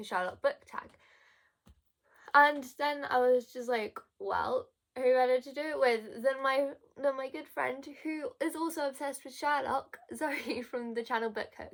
Sherlock book tag? And then I was just like, well, who better to do it with than my good friend who is also obsessed with Sherlock, Zoe from the channel Book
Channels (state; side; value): identical; both; correlation 1.00